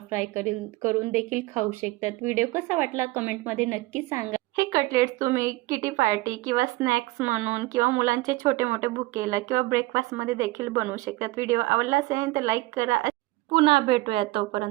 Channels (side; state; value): left; quieter; 20.2 dB